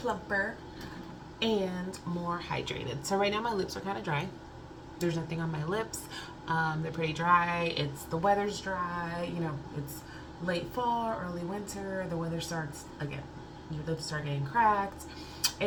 and more hydrated. So right now my lips are kind of dry. There's nothing on my lips. They're pretty dry. The weather's dry. You know, it's late fall, early winter. The weather starts again. Your lips start getting cracked.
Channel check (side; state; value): both; identical; correlation 1.00